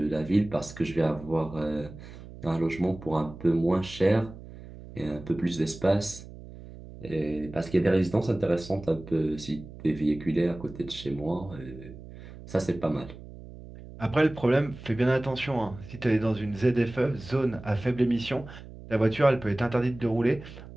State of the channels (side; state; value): right; noise; hum, 16 dB below the sound